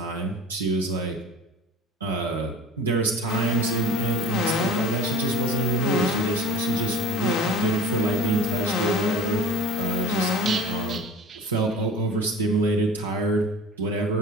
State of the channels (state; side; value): normal; both; correlation 0.39